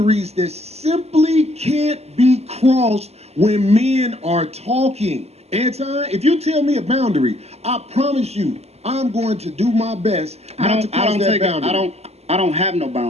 that simply can't be crossed when men are talking. Anton, if you tell me a boundary, I promise you, I'm going to do my best not to cross that boundary. I don't have no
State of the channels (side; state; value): left; late; 0.30 ms